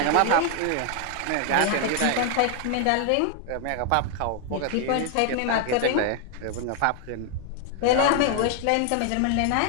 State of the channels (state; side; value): different; both; correlation 0.00